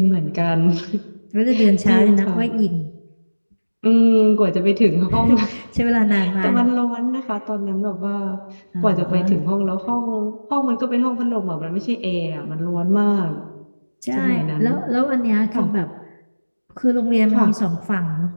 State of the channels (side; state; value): both; inverted; correlation -1.00